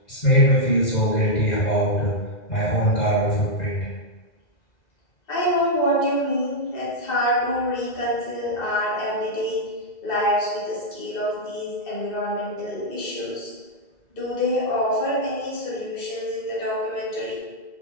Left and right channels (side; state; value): right; late; 2.0 ms